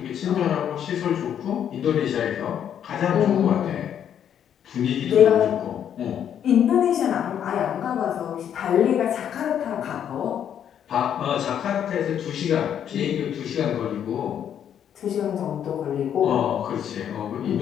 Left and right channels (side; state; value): right; quieter; 9.3 dB